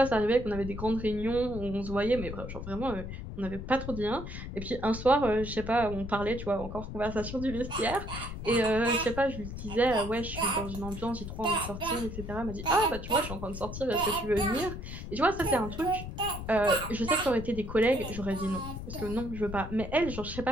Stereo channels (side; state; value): left; noise; rumble, 8 dB below the sound